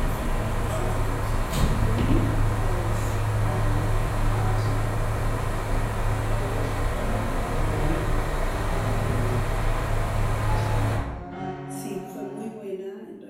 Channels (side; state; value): both; identical; correlation 1.00